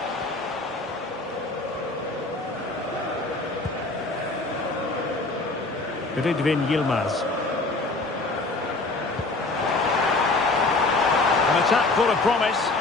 Ridvin Yilmaz. An attack full of promise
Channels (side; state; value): right; quieter; 3.3 dB